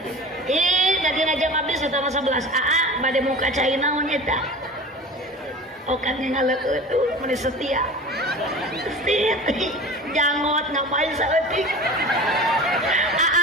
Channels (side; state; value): both; normal; correlation 0.36